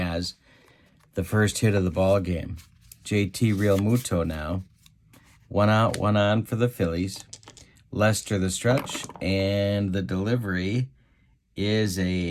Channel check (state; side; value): identical; both; correlation 1.00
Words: the first hit of the ball game. JT Realmuto now. 1 out, 1 on for the Phillies. Lester the stretch, and the delivery is